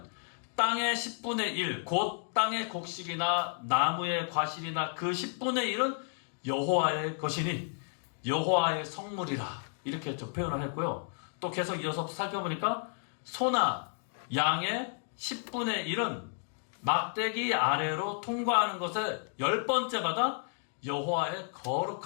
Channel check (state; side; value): silent; right; 56 dB below the other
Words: 땅의 10분의 1, 곧 땅의 곡식이나 나무의 과실이나 그 10분의 1은 여호와의 것이니 여호와의 성물이라 이렇게 좀 표현을 했고요. 또 계속 이어서 살펴보니까 소나 양의 10분의 1은 막대기 아래로 통과하는 것의 10번째마다 여호와의